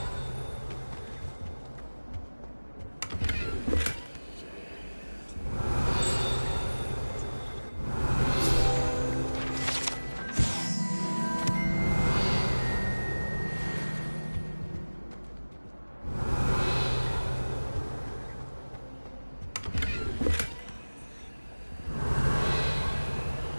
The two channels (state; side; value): inverted; both; correlation -1.00